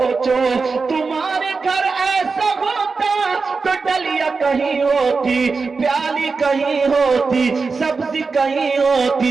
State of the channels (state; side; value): quieter; left; 4.5 dB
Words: تمہارے گھر ایسا ہوتا تو ڈلیا کہیں ہوتی، پیالی کہیں ہوتی، سبزی کہیں